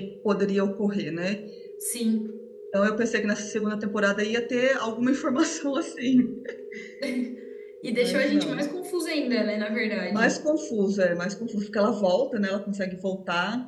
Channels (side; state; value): both; identical; correlation 1.00